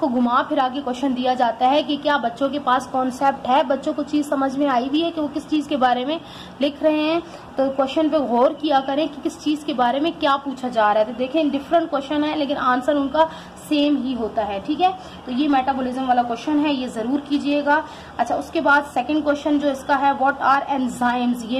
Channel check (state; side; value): identical; both; correlation 1.00